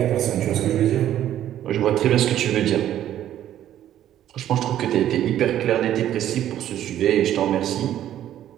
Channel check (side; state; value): left; quieter; 11.7 dB